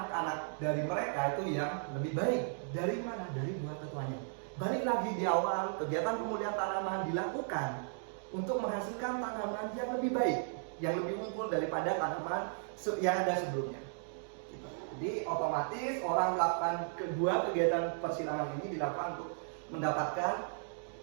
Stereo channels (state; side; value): silent; left; digital silence